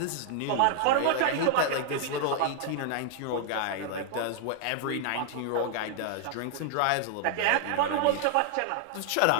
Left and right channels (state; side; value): different; both; correlation 0.00